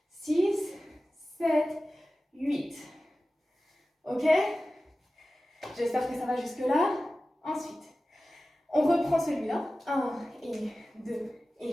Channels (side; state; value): both; normal; correlation 0.95